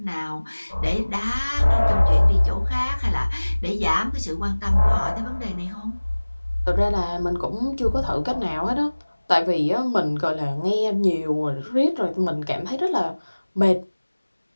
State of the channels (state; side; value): inverted; both; correlation -1.00